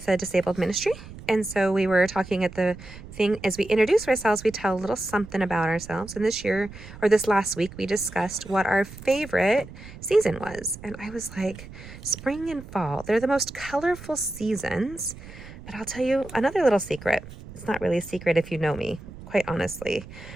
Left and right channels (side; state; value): right; noise; rumble, 15 dB below the sound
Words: a disabled ministry. And so we were talking at the thing, as we introduce ourselves, we tell a little something about ourselves. And this last week, we discussed what our favorite season was. And I was like, spring and fall, they're the most colorful seasons. But I'll tell you another little secret. It's not really a secret if you know me, quite honestly.